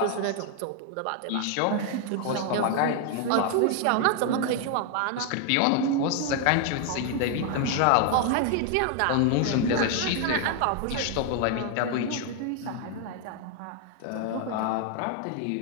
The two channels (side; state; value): both; different; correlation 0.00